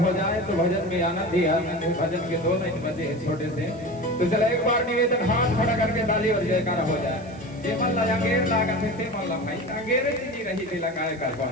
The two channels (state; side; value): noise; right; hiss, 27 dB below the sound